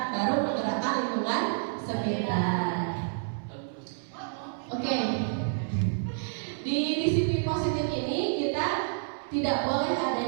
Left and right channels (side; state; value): left; silent; 59 dB below the other